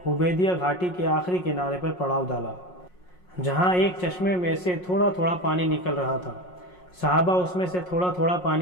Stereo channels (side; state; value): right; late; 5.5 ms